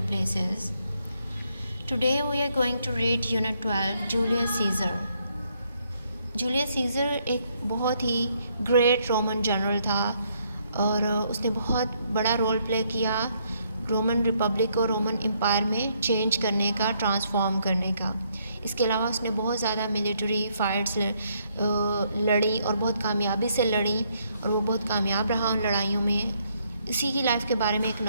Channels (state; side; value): inverted; both; correlation -0.72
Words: places. Today we are going to read Unit 12, Julius Caesar. Julius Caesar एक बहुत ही great Roman general था और उसने बहुत बड़ा role play किया Roman Republic को Roman empire में चेंज करने का, ट्रांसफॉर्म करने का। इसके अलावा उसने बहुत ज़्यादा मिलिट्री फाइट्स लड़ी और बहुत कामयाबी से लड़ी और वो बहुत कामयाब रहा उन लड़ाइयों में। इसी की लाइफ के बारे में एक